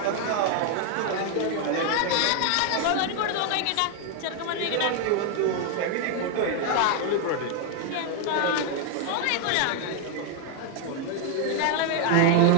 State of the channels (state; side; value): different; both; correlation 0.00